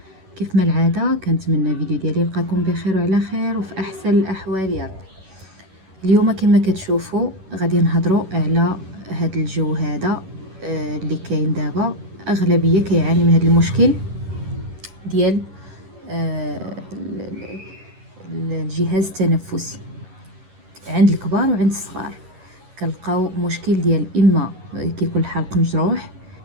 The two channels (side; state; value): left; late; 11 ms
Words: كيف ما العادة كنتمنى فيديو ديالي يلقاكم بخير وعلى خير وفي احسن الاحوال يا رب. اليوم كما كتشوفوا غادي نهضروا على هذا الجو هذا اللي كاين دابا. اغلبيه كيعاني من هذا المشكل ديال الجهاز التنفسي عند الكبار وعند الصغار. كنلقاو مشكل ديال اما كيكون الحلق مجروح،